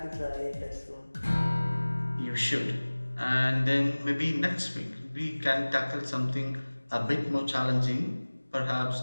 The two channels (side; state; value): both; inverted; correlation -1.00